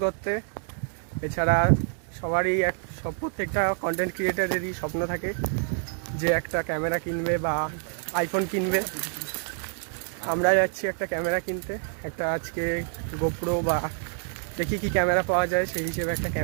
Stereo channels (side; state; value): left; silent; 55 dB below the other